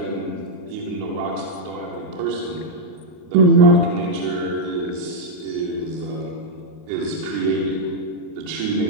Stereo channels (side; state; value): left; late; 39 ms